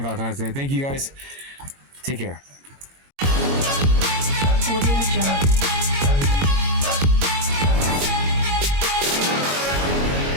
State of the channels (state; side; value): late; left; 22 ms